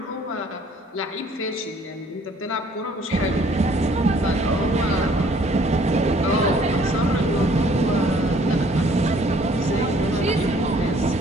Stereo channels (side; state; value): both; normal; correlation 0.59